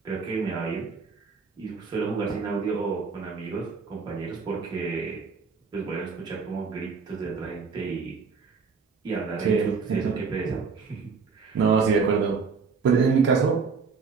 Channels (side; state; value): left; quieter; 5.1 dB